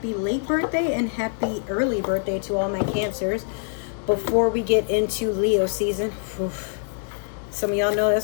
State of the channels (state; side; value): silent; right; digital silence